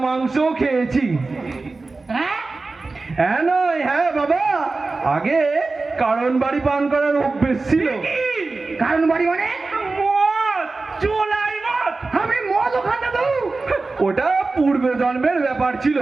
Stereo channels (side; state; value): left; quieter; 3.7 dB